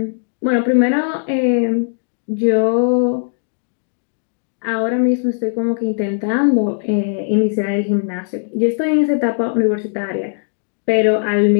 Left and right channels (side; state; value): right; silent; digital silence